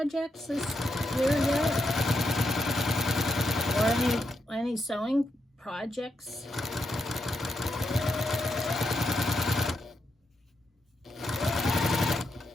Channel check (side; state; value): both; normal; correlation 0.82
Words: this year yet? Or any sewing projects?